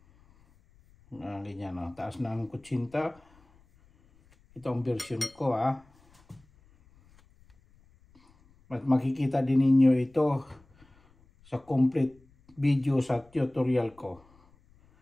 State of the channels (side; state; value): left; noise; rumble, 30 dB below the sound